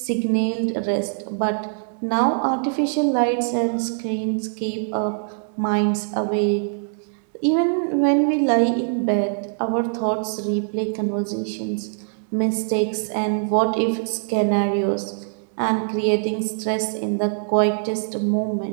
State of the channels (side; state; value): left; silent; digital silence